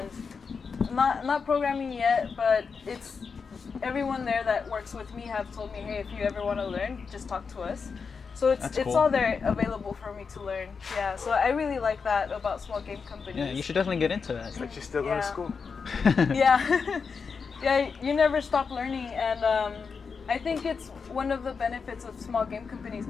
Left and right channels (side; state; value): right; quieter; 5.4 dB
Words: not programming yet, but it's everyone there that works with me have told me, hey, if you ever want to learn, just talk to us. So it's cool. all there available for me to learn. Yeah, so I really like that about small game companies. Yeah, you should definitely get into that. But you still go to school. Yeah. Yeah, you never stop learning, and I think it's one of the benefits of small game companies